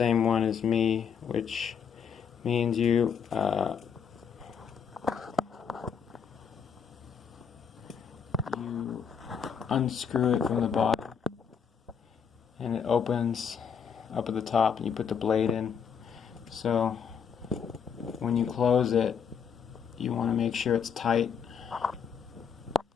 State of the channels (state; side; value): quieter; right; 7.0 dB